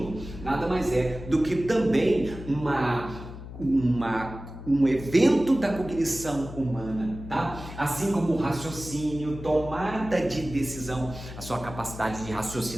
nada mais é do que também um evento da cognição humana, tá? Assim como o raciocínio, tomada de decisão, a sua capacidade de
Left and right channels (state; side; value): noise; left; hum, 12 dB below the sound